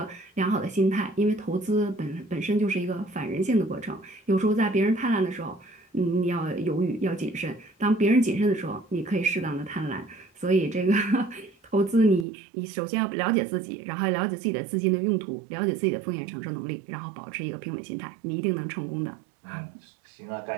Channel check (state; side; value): drops out; left; at 12.2 s